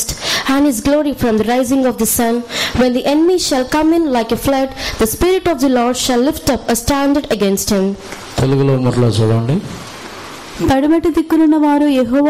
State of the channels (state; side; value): identical; both; correlation 1.00